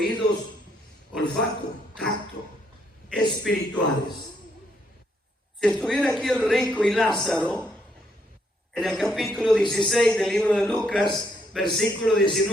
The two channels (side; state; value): both; normal; correlation 0.73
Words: olfato, tacto, espirituales. Si estuviera aquí el rico y Lázaro, en el capítulo 16 del libro de Lucas, versículo